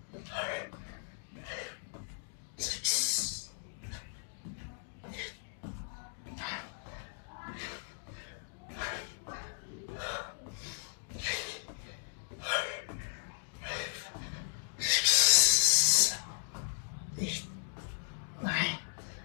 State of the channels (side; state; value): right; silent; digital silence